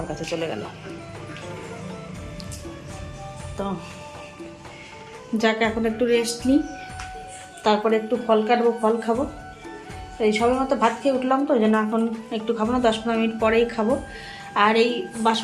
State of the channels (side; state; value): both; identical; correlation 1.00